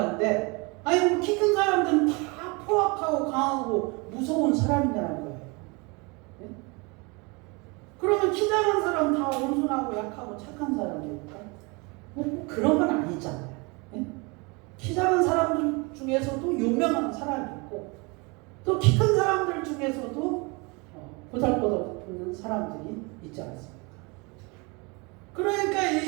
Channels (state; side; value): quieter; left; 28.6 dB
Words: 아니 키 큰 사람들은 다 포악하고 강하고 무서운 사람이라는 거예요. 네? 그러면 키 작은 사람 다 온순하고 약하고 착한 사람입니까? 뭐 그런 건 아니잖아요. 예? 키 작은 사람들 중에서도 유명한 사람이 있고 또 키 큰 사람들 중에서도 보잘것없는 사람들이 있지 않습니까? 그러니까